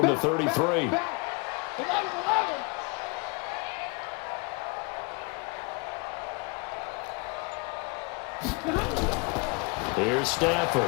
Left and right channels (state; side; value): quieter; right; 29.4 dB